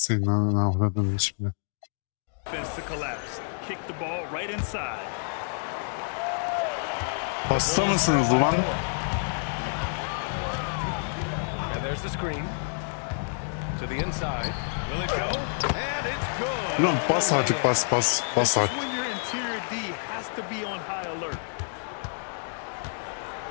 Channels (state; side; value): silent; right; digital silence